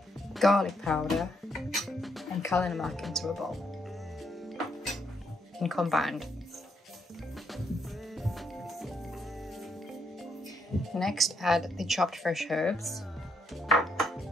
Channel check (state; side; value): normal; both; correlation 0.75